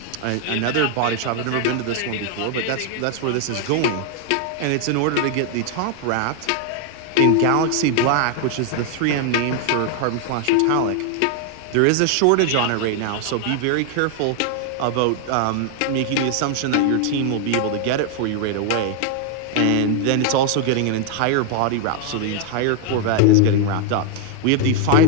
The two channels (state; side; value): different; both; correlation 0.00